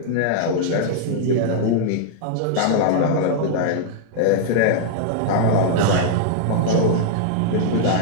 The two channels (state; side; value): different; both; correlation -0.01